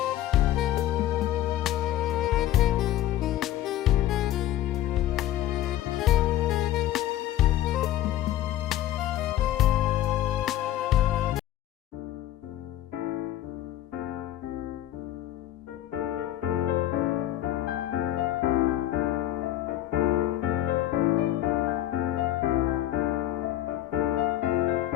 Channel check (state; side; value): quieter; right; 13.3 dB